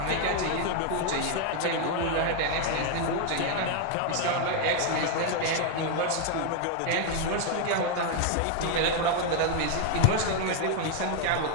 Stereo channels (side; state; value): both; different; correlation 0.00